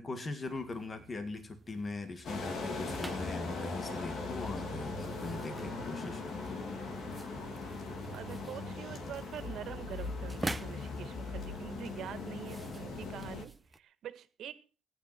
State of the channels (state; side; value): normal; both; correlation 0.74